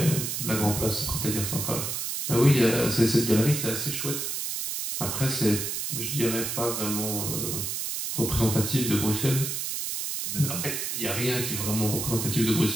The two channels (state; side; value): noise; right; hiss, 3 dB below the sound